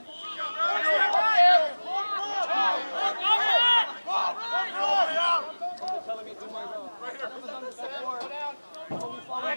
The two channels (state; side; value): inverted; both; correlation -1.00